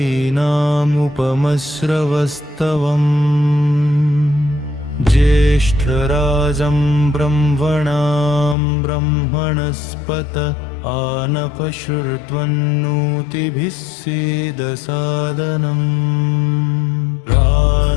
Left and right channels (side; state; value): right; drops out; at 8.6 s